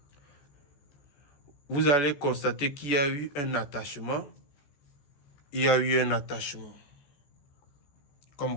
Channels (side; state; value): right; late; 14 ms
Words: Vous allez constater qu'il y a eu un attachement. Il y a eu un attachement.